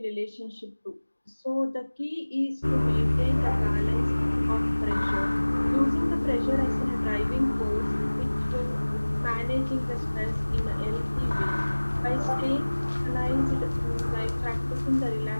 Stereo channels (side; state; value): both; inverted; correlation -1.00